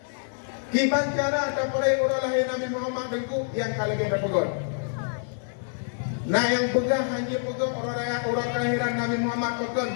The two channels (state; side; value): silent; right; digital silence